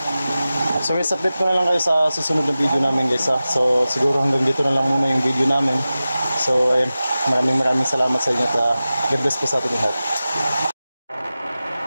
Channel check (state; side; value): inverted; both; correlation -0.95